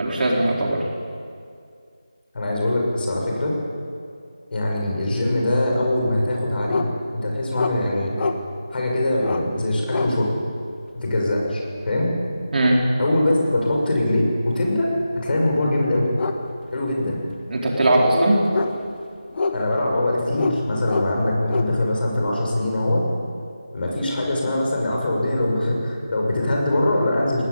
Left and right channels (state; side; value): inverted; both; correlation -0.90